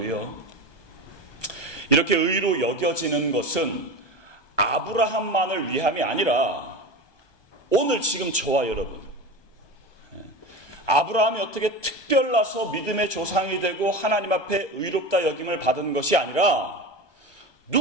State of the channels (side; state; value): right; late; 1.1 ms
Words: 이렇게 의로 여겨지는 것은 아브라함만을 위함이 아니라 오늘 지금 저와 여러분, 아브라함이 어떻게 특별나서 믿음의 조상이 되고 하나님 앞에 의롭다 여김을 받은 것이 아니라